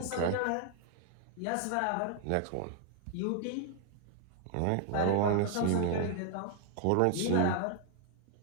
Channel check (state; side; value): different; both; correlation 0.00